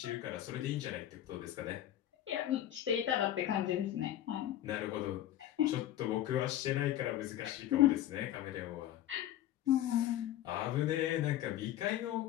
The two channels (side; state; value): right; quieter; 12.6 dB